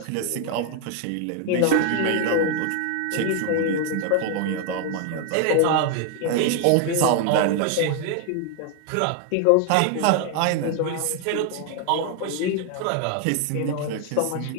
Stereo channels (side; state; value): both; different; correlation 0.00